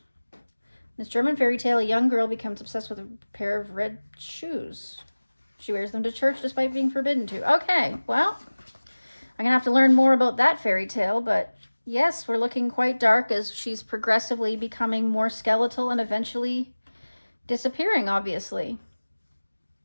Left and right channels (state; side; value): inverted; both; correlation -1.00